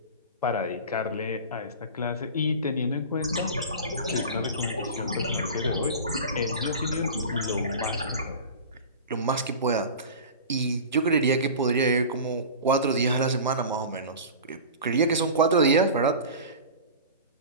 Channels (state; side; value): inverted; both; correlation -0.34